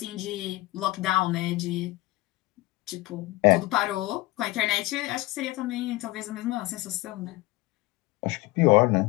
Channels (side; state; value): right; quieter; 19.8 dB